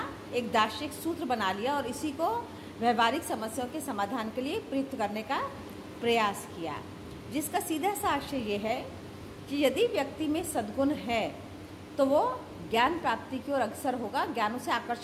एक दार्शनिक सूत्र बना लिया और इसी को व्यवहारिक समस्याओं के समाधान के लिए प्रयुक्त करने का प्रयास किया, जिसका सीधा सा आशय ये है कि यदि व्यक्ति में सद्गुण है तो वो ज्ञान प्राप्ति की ओर अग्रसर होगा, ज्ञान उसे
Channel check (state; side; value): identical; both; correlation 1.00